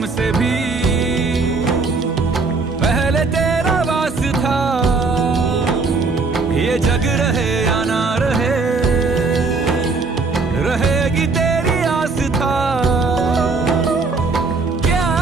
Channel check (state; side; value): quieter; left; 4.1 dB